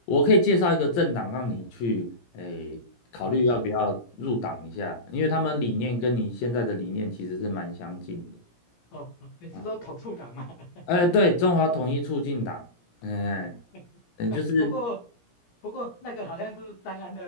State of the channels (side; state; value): right; late; 17 ms